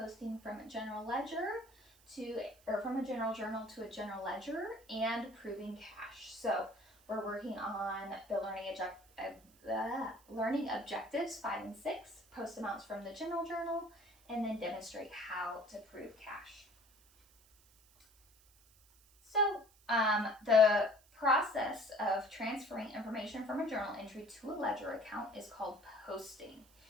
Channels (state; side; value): noise; right; hiss, 28 dB below the sound